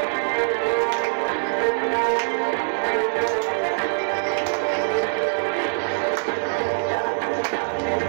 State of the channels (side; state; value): left; silent; digital silence